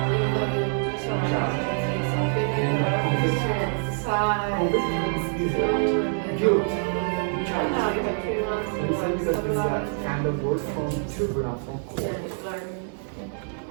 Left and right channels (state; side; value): silent; left; 61 dB below the other